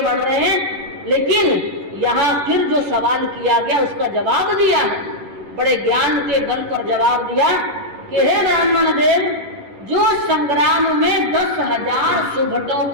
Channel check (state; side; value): late; left; 10 ms